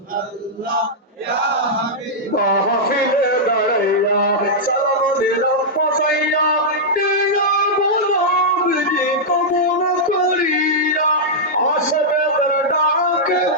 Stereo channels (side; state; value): both; normal; correlation -0.08